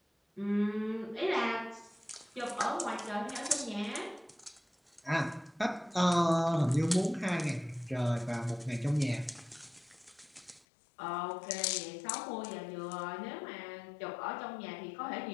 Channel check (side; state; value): right; drops out; at 10.7 s